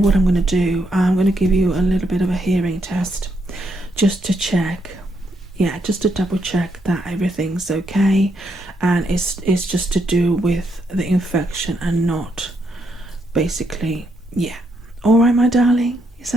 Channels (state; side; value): normal; both; correlation 0.77